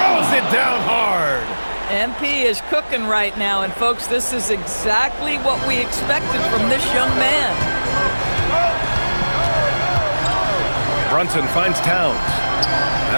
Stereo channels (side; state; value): both; inverted; correlation -1.00